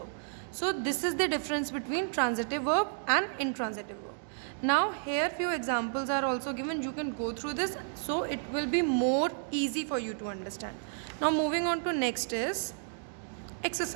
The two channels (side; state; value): left; silent; digital silence